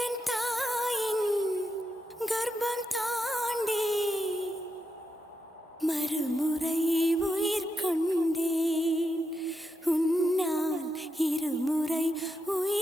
தாயின் கர்ப்பம் தாண்டி மறுமுறை உயிர் கொண்டேன், உன்னால் இருமுறை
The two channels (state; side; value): normal; both; correlation 0.86